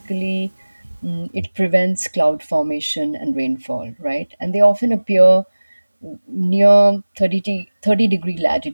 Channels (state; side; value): inverted; both; correlation -1.00